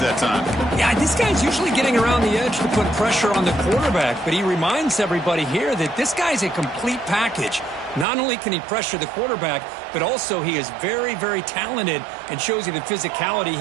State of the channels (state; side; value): drops out; left; at 8.1 s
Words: time. Yeah, this guy's usually getting around the edge to put pressure on the quarterback, but he reminds everybody here that this guy's a complete package. Not only can he pressure the quarterback, but also he is very, very talented and shows you the physicality